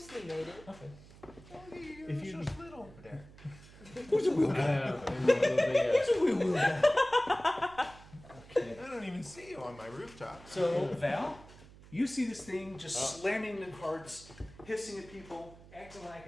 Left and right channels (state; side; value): noise; right; hum, 20 dB below the sound